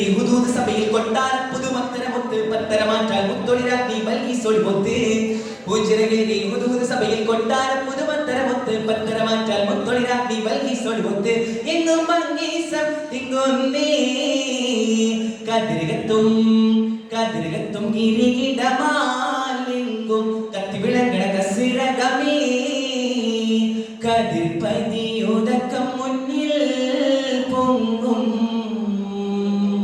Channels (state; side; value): identical; both; correlation 1.00